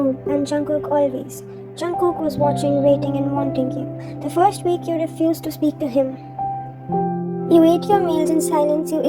and Jungkook always. Jungkook was watching, waiting, and wanting you. The first week you refused to speak to him. You ate your meals in silence, you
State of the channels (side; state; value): both; identical; correlation 1.00